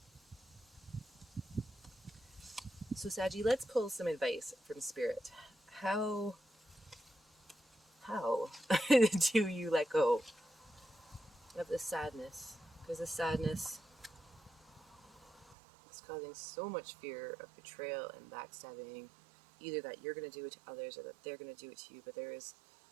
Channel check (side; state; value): left; drops out; at 15.6 s